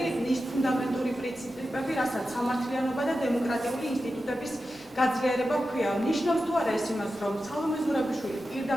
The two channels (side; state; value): both; normal; correlation 0.92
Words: ის ფუნდამენტური პრინციპები, რასაც სამართლიანობა და დემოკრატიული ინსტიტუტების გაძლიერება ჰქვია. ნიშნავს თუ არა ეს იმას, რომ სალომე ზურაბიშვილი